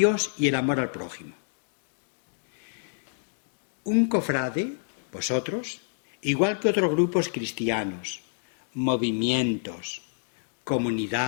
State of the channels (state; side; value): silent; right; digital silence